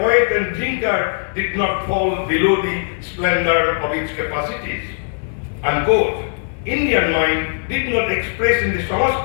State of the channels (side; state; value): right; silent; digital silence